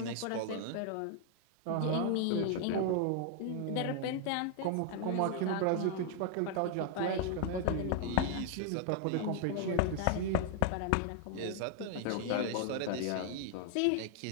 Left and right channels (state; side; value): different; both; correlation 0.00